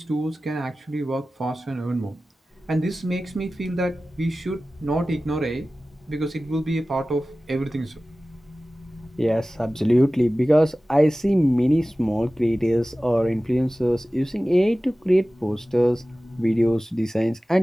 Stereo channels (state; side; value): normal; both; correlation 0.96